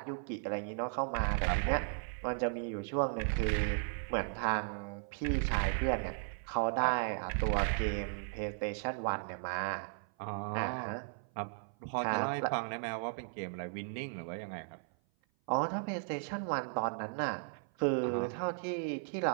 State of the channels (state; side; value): silent; left; 54 dB below the other